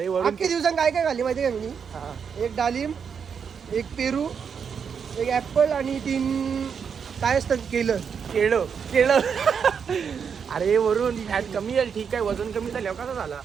वरून अख्खे दिवसांत काय काय खाल्ली माहिती आहे का मी? हा. एक डालिम, एक पेरू, एक ऍपल आणि 3 काय असतात केळं अरे वरून फॅट कमी येईल ठीक आहे. वजन कमी झाल्यावर कसा झाला?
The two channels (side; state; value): left; quieter; 6.7 dB